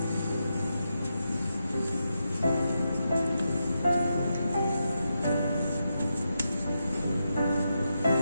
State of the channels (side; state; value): both; inverted; correlation -0.86